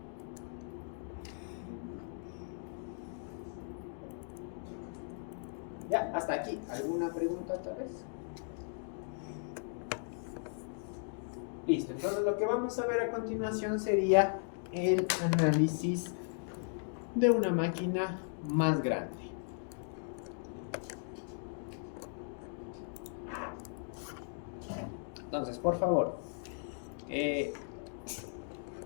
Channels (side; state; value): right; silent; digital silence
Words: Ya, hasta aquí. ¿Alguna pregunta tal vez? Listo, entonces lo que vamos a ver a continuación sería el análisis de una máquina más grande. Entonces, por favor,